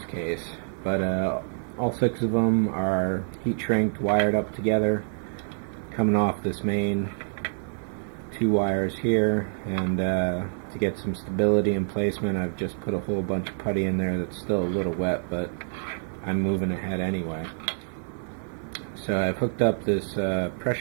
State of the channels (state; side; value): silent; left; 60 dB below the other